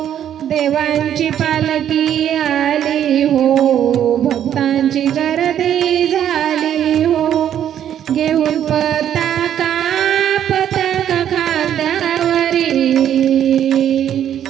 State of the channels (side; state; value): left; quieter; 10.2 dB